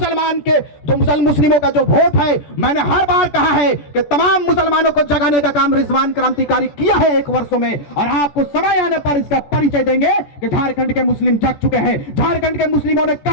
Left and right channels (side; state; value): right; late; 14 ms